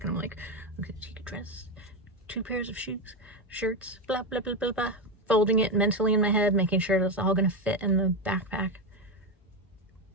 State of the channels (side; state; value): both; normal; correlation 0.11